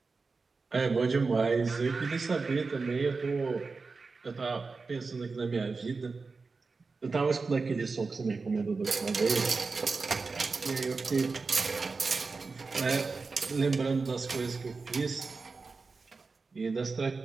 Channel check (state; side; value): quieter; left; 4.3 dB